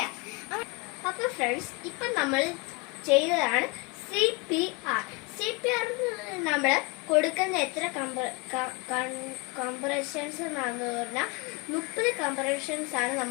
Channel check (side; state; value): right; quieter; 29.2 dB